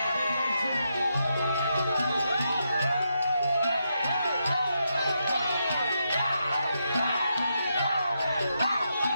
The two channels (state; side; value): inverted; both; correlation -0.83